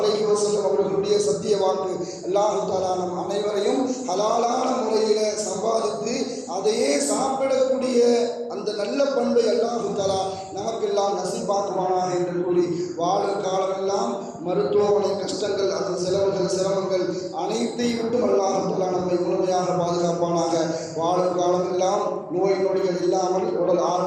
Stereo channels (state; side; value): identical; both; correlation 1.00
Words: வஸல்லம் அவர்களுடைய சத்திய வாக்கு. அல்லாஹ் தஆலா நம் அனைவரையும் ஹலாலான முறையில் சம்பாதித்து அதையே சாப்பிடக்கூடிய அந்த நல்ல பண்பை அல்லாஹ் தஆலா நமக்கெல்லாம் நசீபாக்குவானாக என்று கூறி வாழும் காலமெல்லாம் மருத்துவமனை கஷ்டங்கள், அதன் செலவுகள், சிரமங்கள் அனைத்தையும் விட்டும் அல்லாஹ் தஆலா நம்மை முழுமையாக பாதுகாப்பானாக. வாழும் காலமெல்லாம் நோய் நொடிகள் இல்லாமல் உடல்